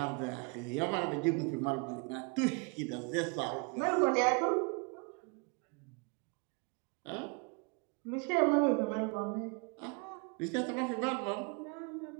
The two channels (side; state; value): left; quieter; 32.3 dB